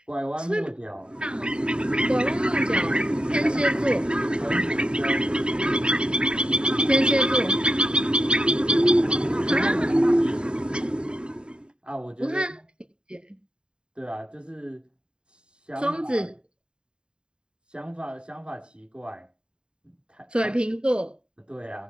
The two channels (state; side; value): late; left; 0.050 ms